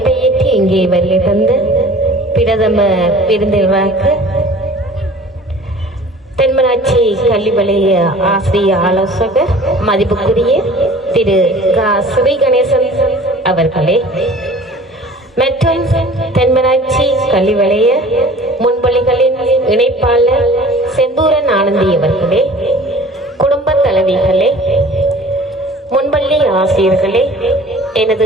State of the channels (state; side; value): normal; both; correlation 0.46